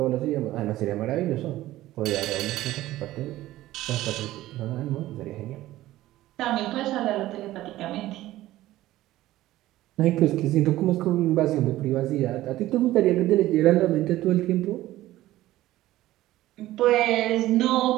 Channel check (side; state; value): left; quieter; 15.6 dB